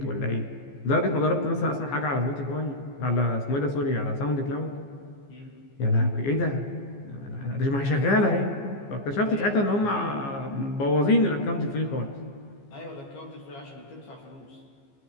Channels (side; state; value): right; late; 15 ms